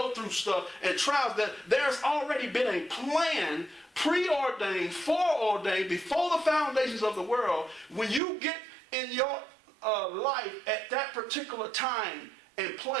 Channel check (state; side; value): drops out; left; at 8.2 s